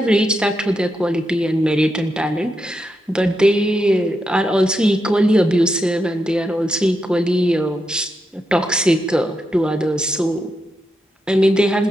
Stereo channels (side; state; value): both; normal; correlation 0.85